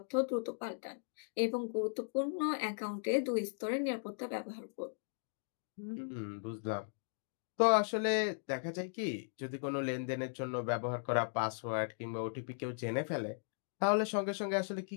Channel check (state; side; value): silent; right; digital silence